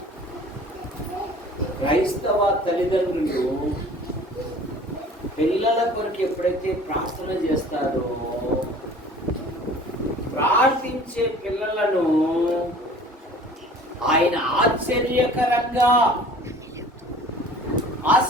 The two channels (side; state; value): both; normal; correlation 0.46